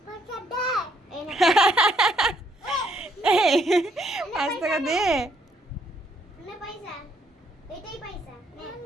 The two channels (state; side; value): normal; both; correlation 0.70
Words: কত দে? এই না। 5 টাকা দে। নে পয়সা। এটাই পয়সা। নে